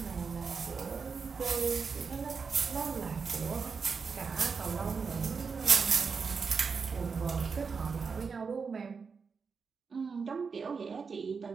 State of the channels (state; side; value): quieter; left; 5.3 dB